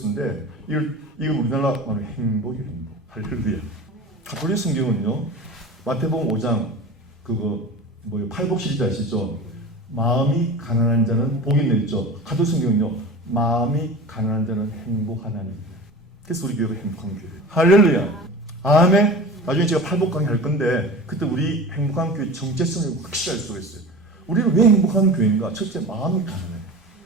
이걸 우리나라 말로 행복이에요. 행복. 할렐루야. 가톨릭 성경은요. 마태복음 5장 팔복 시리즈 아시죠? 마음이 가난한 자는 복이 있죠. 가톨릭 성경은요. 마음이 가난한 자는 행복하나니. 그래서 우리 교회가 행복한 교회예요. 할렐루야. 아멘. 나중에 제가 팔복 강의 할 건데 그때 우리 행복한 교회 정체성을 확실히 알 수가 있어요. 우리는 왜 행복한 교회인가? 첫째, 마음이 가난해요.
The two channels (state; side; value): normal; both; correlation 0.34